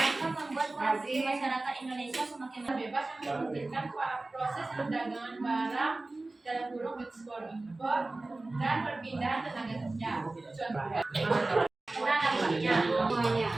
membuat kondisi masyarakat Indonesia semakin bebas yang memungkinkan proses perdagangan barang dalam kurung ekspor impor dan perpindahan tenaga kerja. Karena dampaknya. Semuanya.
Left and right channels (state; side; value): quieter; left; 3.1 dB